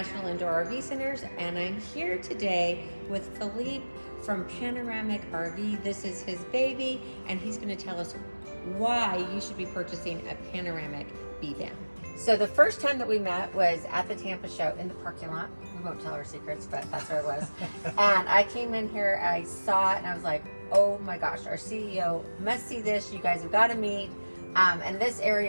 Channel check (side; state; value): both; inverted; correlation -1.00